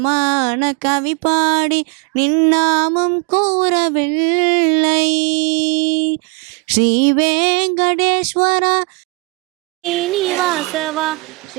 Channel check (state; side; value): quieter; left; 27.8 dB